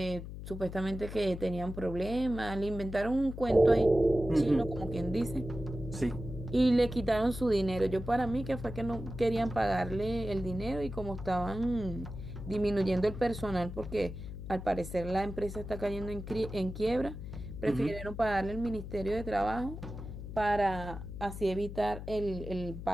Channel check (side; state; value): left; noise; hum, 9 dB below the sound